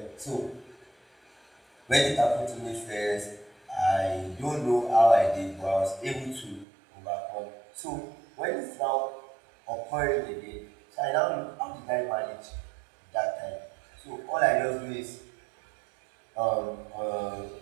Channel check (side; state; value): left; drops out; at 6.7 s